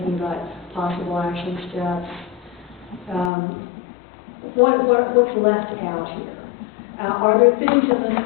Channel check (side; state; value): right; drops out; at 3.3 s